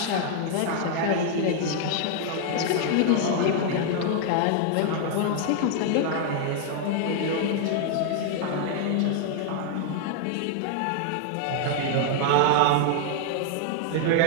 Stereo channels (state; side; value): different; both; correlation 0.00